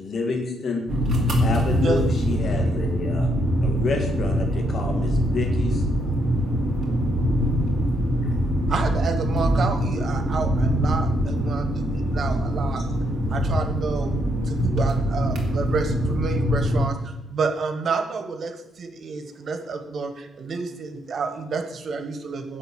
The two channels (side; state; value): both; normal; correlation 0.75